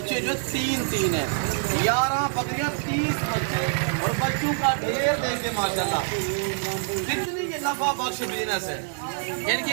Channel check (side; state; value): left; silent; digital silence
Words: جو 3 ہیں. 11 بکریاں 30 بچے اور بچوں کا ڈھیر دیں گے ماشاءاللہ. کتنی یہ نفع بخش بزنس ہے. ان